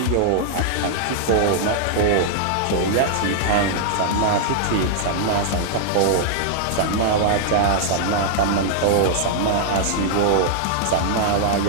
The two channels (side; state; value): both; different; correlation -0.01